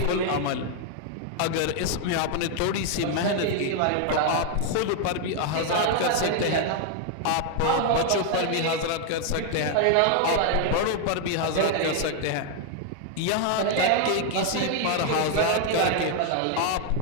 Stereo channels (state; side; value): different; both; correlation 0.00